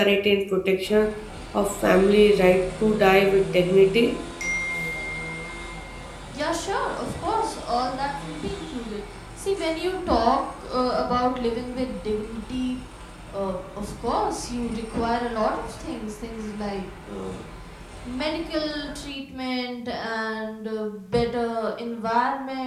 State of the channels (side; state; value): both; identical; correlation 1.00